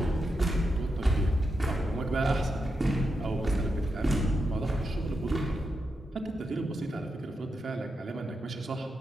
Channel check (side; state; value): both; normal; correlation 0.86